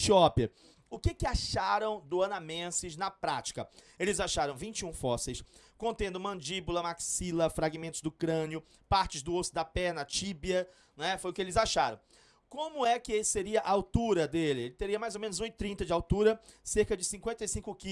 O que acharam do Anamensis na prática? Eles acharam 21 fósseis, contendo mandíbula, maxila, fragmentos do crânio, partes do osso da perna, tíbia, né? Foi o que eles acharam. Como é que seria a altura dele? Ele teria mais ou menos 1,30 de altura, cerca de 55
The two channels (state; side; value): identical; both; correlation 1.00